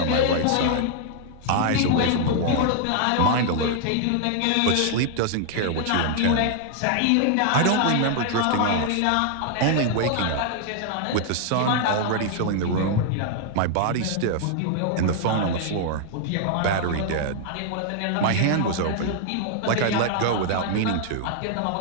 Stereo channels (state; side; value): different; both; correlation 0.00